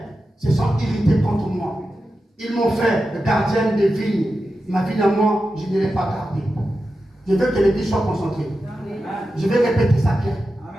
se sont irrités contre moi. Ils m'ont fait gardienne des vignes. Ma vie à moi, je ne l'ai pas gardée. Je veux que les filles soient concentrées. Amen. Je vais répéter ça bien.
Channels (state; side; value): normal; both; correlation 0.91